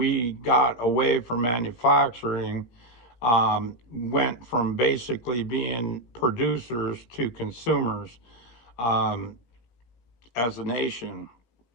got away from manufacturing, went from basically being producers to consumers. um, as a nation.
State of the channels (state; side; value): late; right; 17 ms